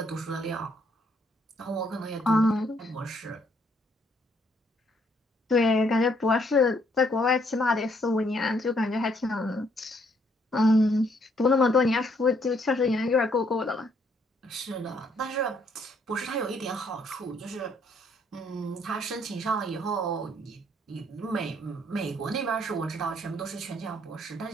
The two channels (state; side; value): normal; both; correlation 0.69